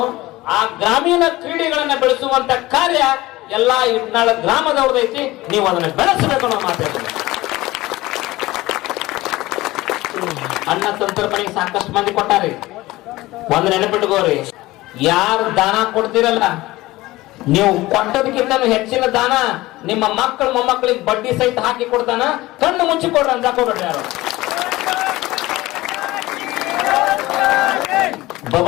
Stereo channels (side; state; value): right; quieter; 18.6 dB